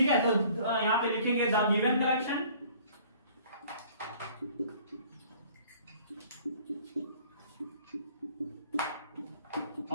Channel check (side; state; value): both; inverted; correlation -0.53